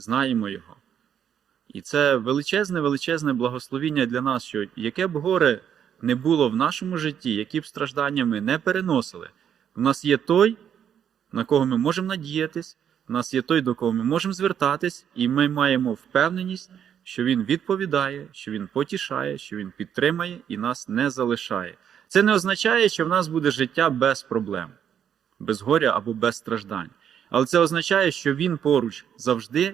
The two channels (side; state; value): left; quieter; 8.8 dB